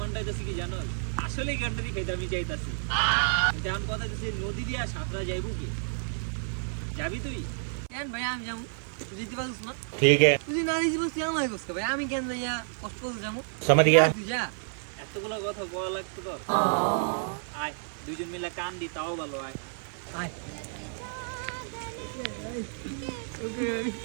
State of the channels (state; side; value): silent; left; 58 dB below the other